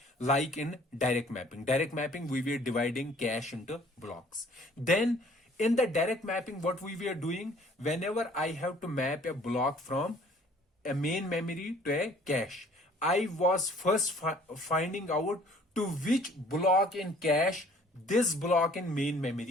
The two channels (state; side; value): normal; both; correlation 0.55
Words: like in direct mapping. Direct mapping, we were dividing cache into blocks. Then in the direct mapping, what we were doing, whenever I have to map a block from a main memory to a cache, I was first finding out to which block in cache this block in main